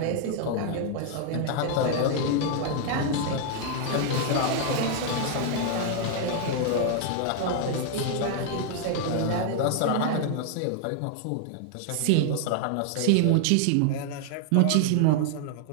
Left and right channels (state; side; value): different; both; correlation 0.00